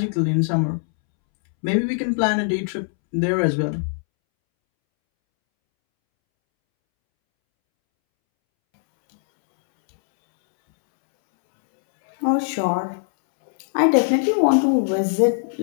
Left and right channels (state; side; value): silent; right; 65 dB below the other